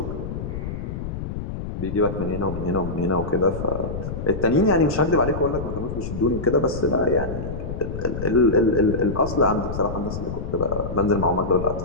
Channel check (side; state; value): left; noise; rumble, 6 dB below the sound